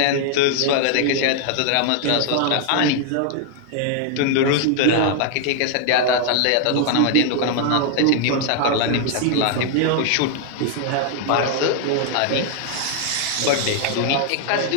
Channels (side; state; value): both; different; correlation 0.00